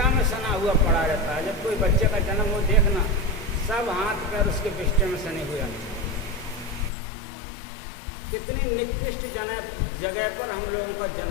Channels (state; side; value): drops out; right; at 6.9 s